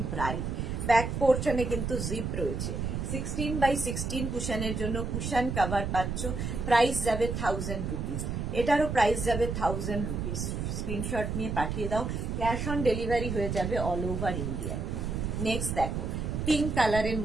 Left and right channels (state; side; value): noise; right; rumble, 3 dB below the sound